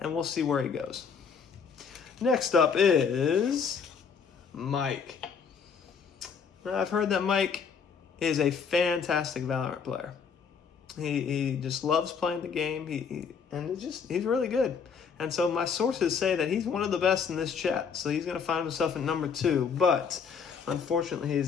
we'll see where he goes. Next up is Mike. Now, I've heard that Mike is a fantastic Valorant player. He just loves playing the game, he's really good. And so my sources say that he's one of the best in this chat, so he's going to find himself at number 2. But unfortunately,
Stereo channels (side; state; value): right; quieter; 6.3 dB